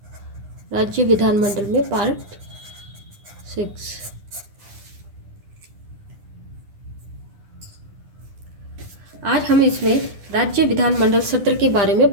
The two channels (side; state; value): left; late; 9.9 ms